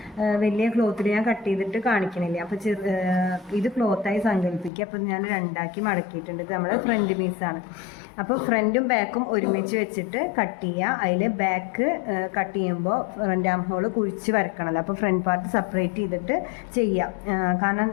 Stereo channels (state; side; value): drops out; right; at 4.7 s